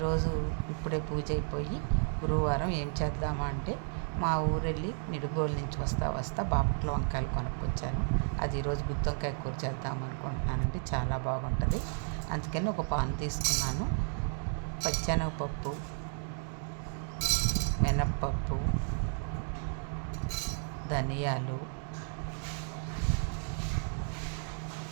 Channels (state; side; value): silent; left; 56 dB below the other